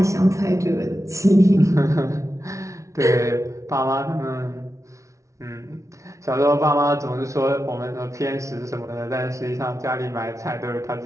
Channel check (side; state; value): left; late; 0.14 ms